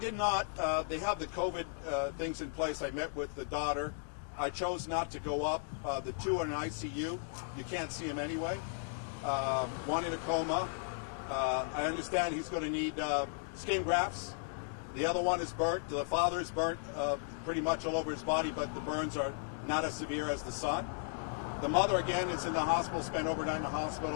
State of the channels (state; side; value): silent; right; digital silence